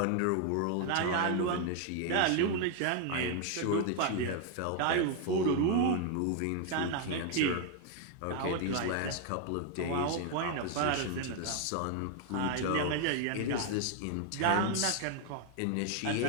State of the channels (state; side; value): different; both; correlation 0.00